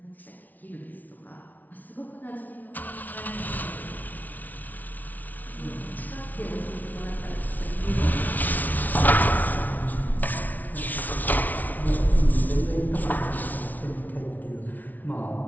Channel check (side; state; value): right; late; 0.079 ms